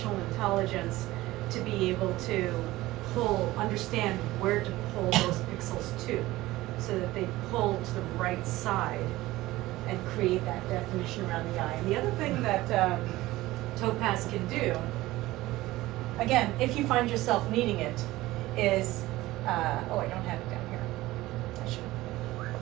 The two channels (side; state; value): left; quieter; 17.8 dB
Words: intelligence to be able to understand where to pull those pixels to, so that they pull to the right side and create that definition around the eye. And the other thing that Topaz can do, again, if you find yourself needing it, is, oh, I don't have it down here. I should.